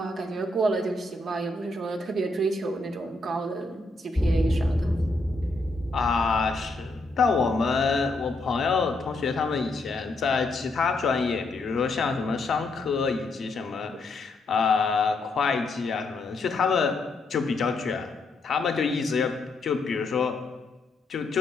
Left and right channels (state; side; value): quieter; right; 3.1 dB